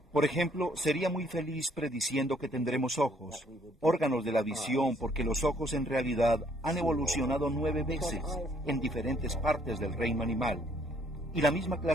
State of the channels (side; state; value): both; normal; correlation 0.65